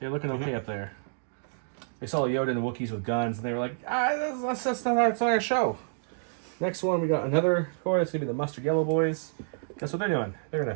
okay up there. They saw Yoda and the Wookiees with guns, and they were like, that's not our show. Next one, we got another core. That's gonna be the mustard yellow boys. Guess what they're doing? They're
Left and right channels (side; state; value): left; silent; digital silence